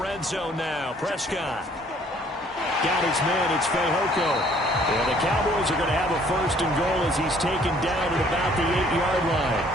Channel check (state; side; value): normal; both; correlation 0.59